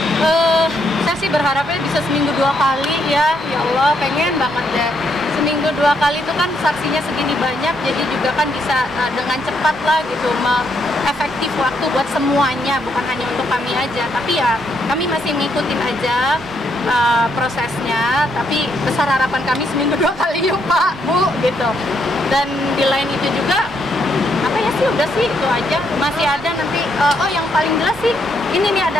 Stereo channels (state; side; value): normal; both; correlation 0.75